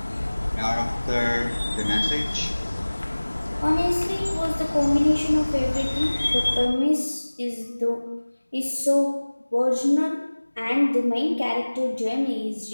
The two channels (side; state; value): both; inverted; correlation -1.00